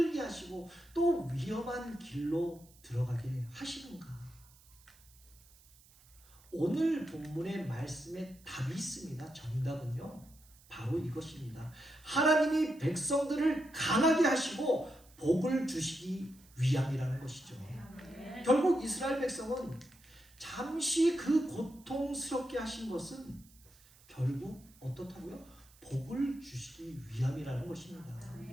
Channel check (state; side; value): noise; right; hiss, 26 dB below the sound